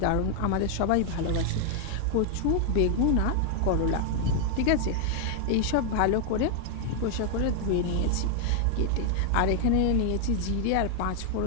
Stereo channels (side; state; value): both; different; correlation 0.00